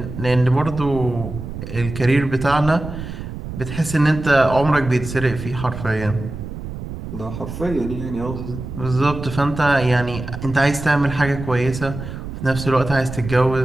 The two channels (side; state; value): right; noise; rumble, 9 dB below the sound